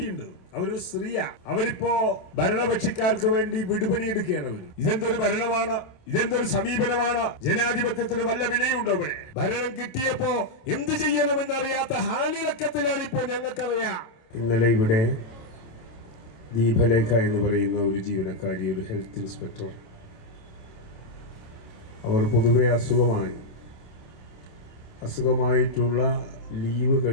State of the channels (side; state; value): right; late; 27 ms